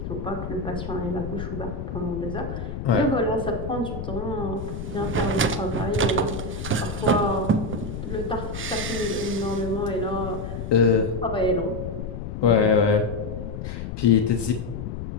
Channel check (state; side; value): noise; left; rumble, 6 dB below the sound